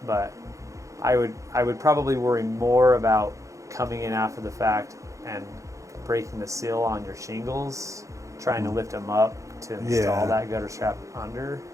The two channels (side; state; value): left; late; 0.15 ms